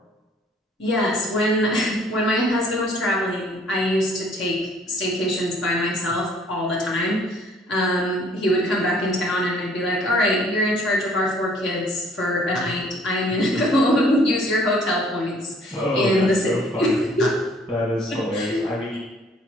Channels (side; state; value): both; normal; correlation 0.58